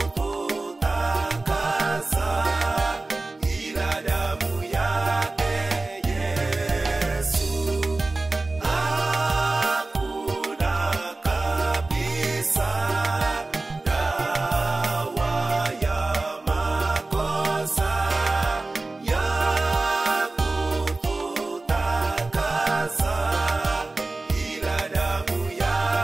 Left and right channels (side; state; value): left; quieter; 3.2 dB